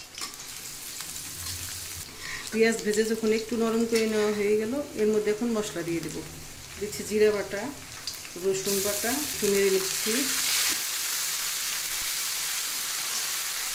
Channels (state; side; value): identical; both; correlation 1.00